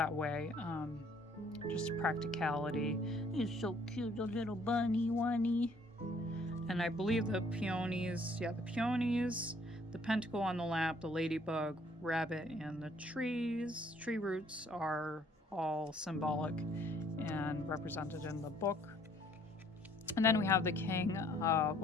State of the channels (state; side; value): normal; both; correlation 0.61